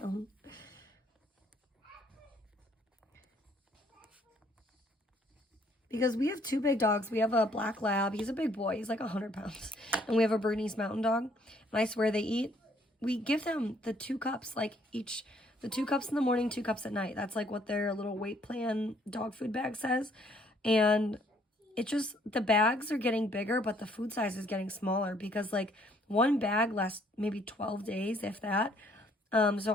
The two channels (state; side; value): normal; both; correlation 0.65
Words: Because we have 2 big dogs. We have a black lab. He's a big boy. He's like 100 pounds. And we have a Bernese Mountain Dog. And I swear they eat. We give them the 2 cups, like each, the 2 cups in the morning, 2 cups at night. That's like what their little weight plan dog food bag says. And it just, the bags are getting bigger, but the food size is getting smaller because like one bag lasts maybe 12 days, if that. So